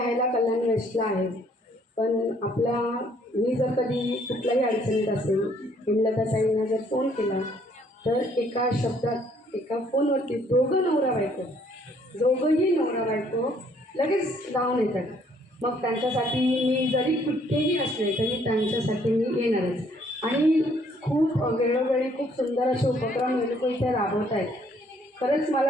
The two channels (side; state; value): both; normal; correlation 0.64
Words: कल्याण वेस्टला आहे, पण मी जर कधी कुठल्याही अडचणीत असेल हेमलताताईंना जर फोन केला तर एका शब्दात एका फोनवरती दोघंही नवरा बायको लगेच धावून येतात. मग त्यांच्यासाठी मी जरी कुठेही असले तरी त्यांच्यासाठी मी येणारच. आणि खूप वेळोवेळी खूप सुंदर असे उपक्रम हे लोक इथे राबवत आहेत. खरंच मला